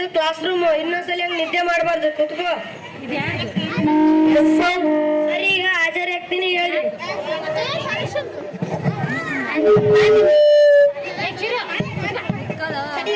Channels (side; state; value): both; identical; correlation 1.00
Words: ಕ್ಲಾಸ್ ರೂಮ್. ಇನ್ನೊಂದ್ಸಲಿ ಹಂಗ ನಿದ್ದೆ ಮಾಡಬಾರ್ದು, ಕುತ್ಕೋ. ಸರಿ, ಈಗ ಹಾಜರಿ ಆಗ್ತೀನಿ, ಹೇಳಿ.